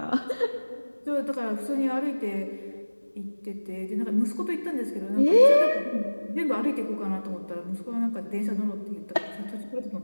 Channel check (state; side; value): inverted; both; correlation -1.00